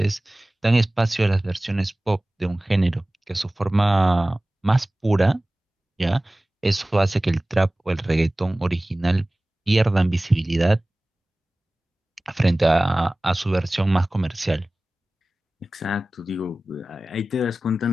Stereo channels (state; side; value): normal; both; correlation 0.98